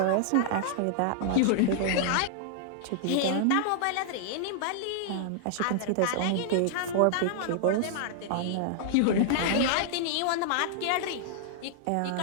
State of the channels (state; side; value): different; both; correlation -0.01